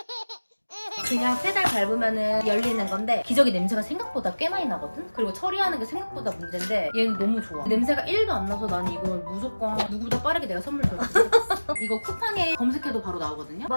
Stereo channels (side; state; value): both; inverted; correlation -1.00